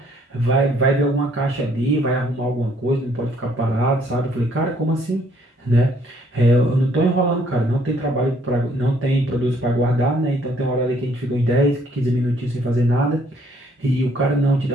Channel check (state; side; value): normal; both; correlation 0.64